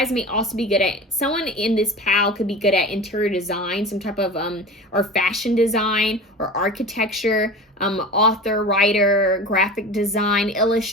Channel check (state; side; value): normal; both; correlation 0.34